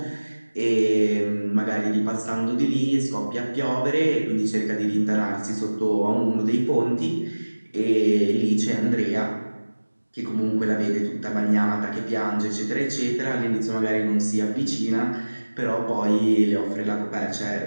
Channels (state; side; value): inverted; both; correlation -1.00